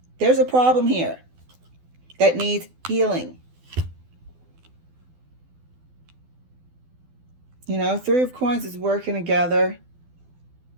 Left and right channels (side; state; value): left; late; 12 ms